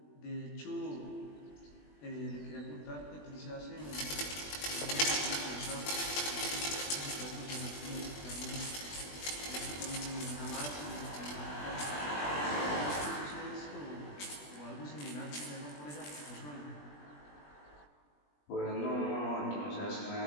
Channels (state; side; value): late; right; 20 ms